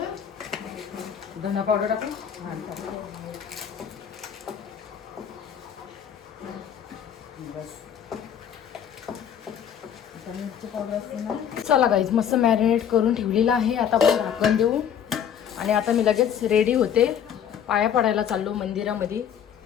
धना पावडर टाकू. हां टाक. बस. मिरची पावडर असते ना. चला गाईज मस्त मॅरिनेट करून ठेवलेलं आहे. आता आपण झाकण देऊ. आणि आता मी लगेच रेडी होते. पाया पडायला चाललो मंदिरामध्ये.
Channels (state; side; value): quieter; right; 8.8 dB